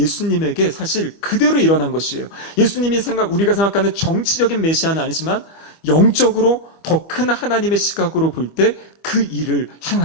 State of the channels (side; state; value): right; late; 25 ms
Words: 사실 그대로 일어난 것이에요. 예수님이 우리가 생각하는 정치적인 메시아는 아니지만 영적으로 더 큰 하나님의 시각으로 볼 때 그 일을